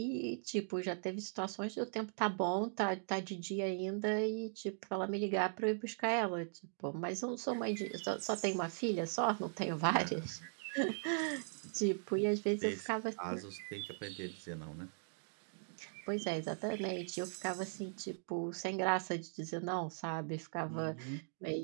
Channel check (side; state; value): left; silent; digital silence